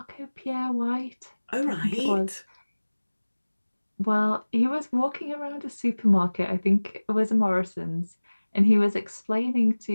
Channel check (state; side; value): inverted; both; correlation -1.00